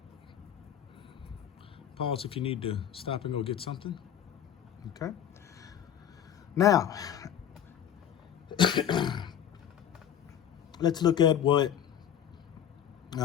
Pause if you need to stop and go get something. Okay. Now, let's look at what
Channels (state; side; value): quieter; right; 9.6 dB